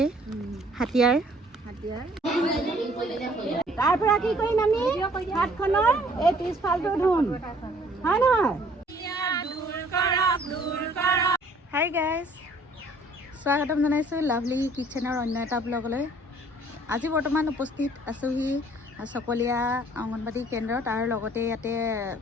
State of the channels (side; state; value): both; normal; correlation 0.58